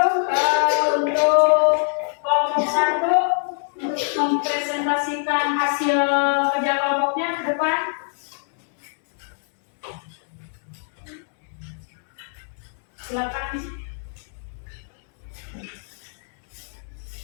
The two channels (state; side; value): silent; right; 63 dB below the other